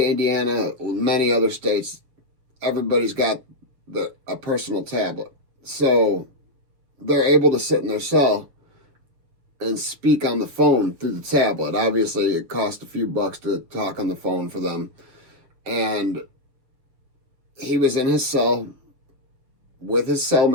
Indiana, many other states, everybody's got a personal tablet. So they're able to sit in their cell and speak on the phone through the tablet. Obviously, it costs a few bucks to talk on the phone for them. And he was in his cell with his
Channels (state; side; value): late; left; 7.1 ms